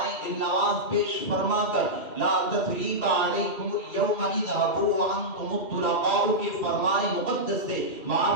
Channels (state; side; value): late; right; 2.6 ms